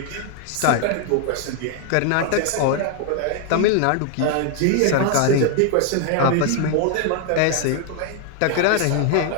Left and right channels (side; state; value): both; different; correlation 0.00